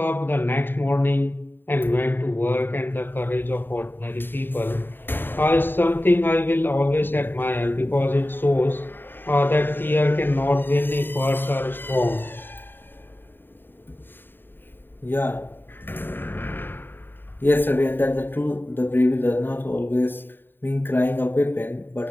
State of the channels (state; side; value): late; right; 0.095 ms